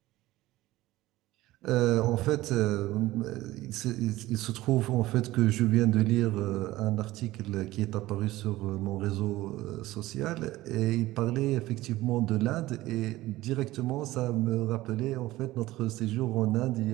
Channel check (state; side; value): quieter; left; 17.2 dB